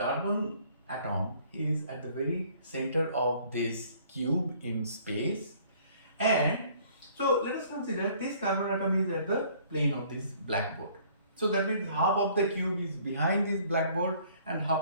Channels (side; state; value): both; inverted; correlation -0.58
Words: atom is at the very center of this cube in space, and so let us consider this carbon atom is at the plane of this blackboard. So that means half of the cube is behind this blackboard and